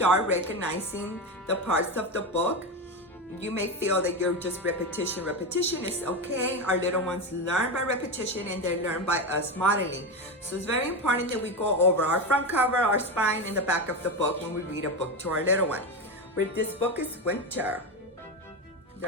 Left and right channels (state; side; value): normal; both; correlation 0.17